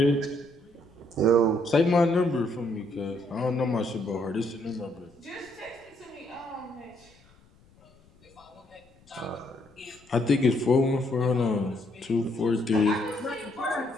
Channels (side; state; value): left; noise; rumble, 29 dB below the sound